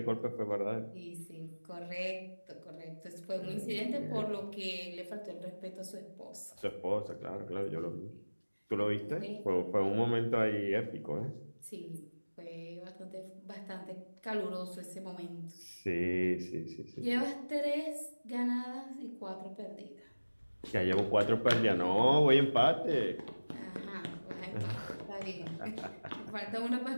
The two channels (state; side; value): inverted; both; correlation -1.00